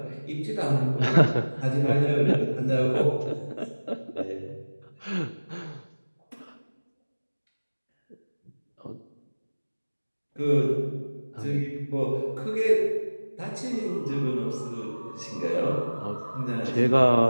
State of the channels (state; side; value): inverted; both; correlation -1.00